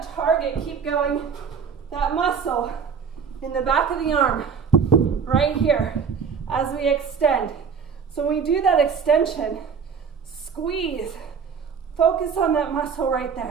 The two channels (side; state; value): left; quieter; 6.3 dB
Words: to target, keep going, that muscle in the back of the arm, right here, as we extend. So when we do that extension, squeeze, focus on that muscle right